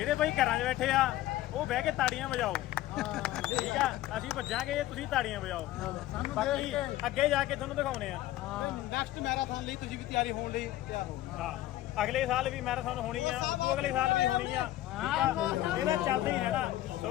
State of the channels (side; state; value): right; quieter; 14.9 dB